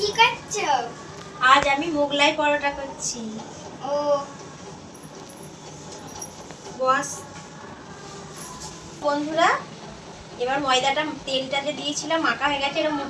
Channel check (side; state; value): both; identical; correlation 1.00